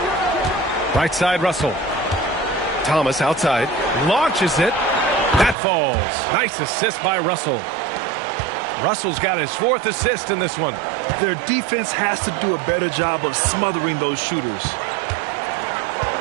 Right side, Russell. Thomas outside. Launches it. That falls. Nice assist by Russell. Russell's got his 4th assist in this one. Their defense has to do a better job of smothering those shooters.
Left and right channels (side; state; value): left; drops out; at 5.6 s